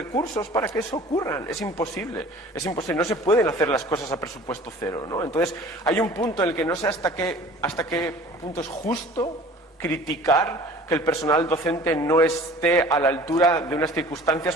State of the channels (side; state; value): both; normal; correlation 0.46